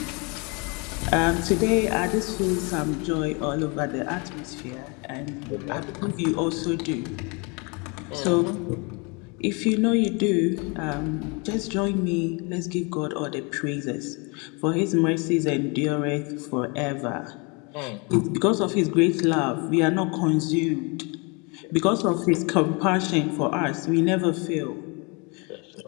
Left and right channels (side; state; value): right; quieter; 31.0 dB